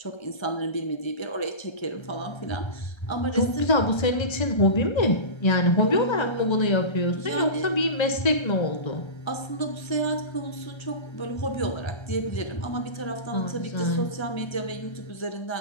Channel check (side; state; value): right; late; 1.3 ms